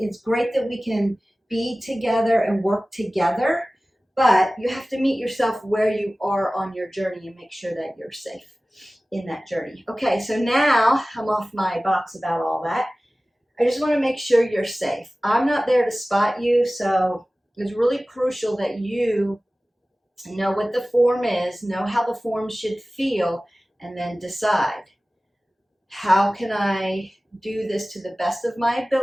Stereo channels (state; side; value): normal; both; correlation 0.97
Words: great that we can be together and work together, but you have to meet yourself where you are on your journey and make sure that you're safe in that journey. Okay, so now I'm off my box about all that. I just want to make sure you're safe. I'm not there to spot you, so it's really crucial that you know what the form is, know how the form should feel, and then decide, how can I do this to the best of my